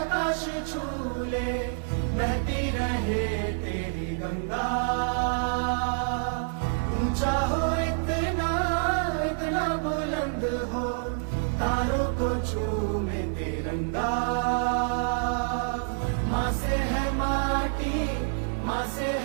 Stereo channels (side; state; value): left; silent; digital silence